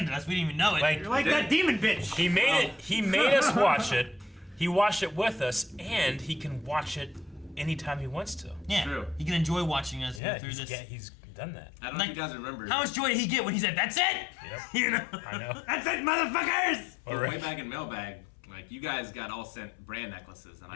us. We didn't even know it. Like, You're like that demon bitch. he made it. He made us watch it. He watched it with us, and he can watch it anytime he wants to. yeah, True. you can enjoy watching us Yeah, go through this. he's done that. I don't know Like, if you guys remember. How much joy did he get when he said, "That's it"? Yep. You know. I know. That's it, motherfuckers. But Alright. way back in Mailbag, like you guys got all sent brand necklaces, and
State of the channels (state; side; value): drops out; right; at 10.2 s